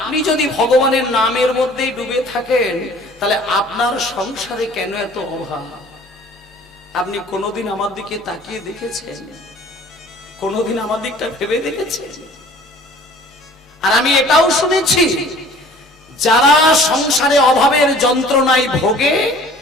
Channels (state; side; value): normal; both; correlation 0.49